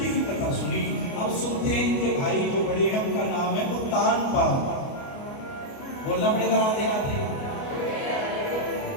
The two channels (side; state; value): right; late; 29 ms